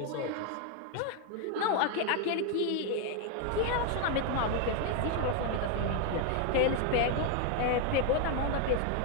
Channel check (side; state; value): both; different; correlation 0.01